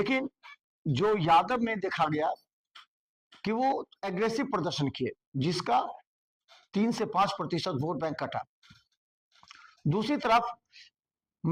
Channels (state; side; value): identical; both; correlation 1.00